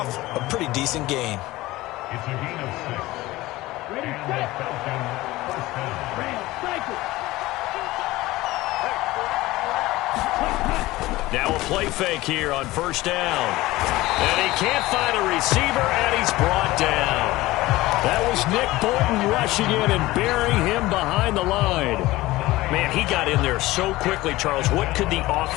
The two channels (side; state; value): right; quieter; 18.5 dB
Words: a pretty decent gain. It's a gain of 6. Ready, set. First down. Now a play fake here on 1st down. And he can't find a receiver, and he's brought down. That was Nick Bolton rushing in and burying him behind the line. Man, he got in there so quickly, Charles. What could the